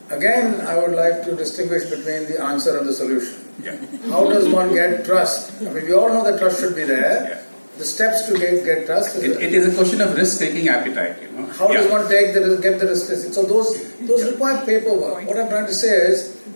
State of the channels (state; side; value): inverted; both; correlation -1.00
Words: Again, I would like to distinguish between the answer and the solution. Yeah. How does one get trust? We all know that trust should be there. Yeah. The steps to get trust it is a question of risk-taking appetite. How does one get the risk? So those require paperwork. What I'm trying to say is,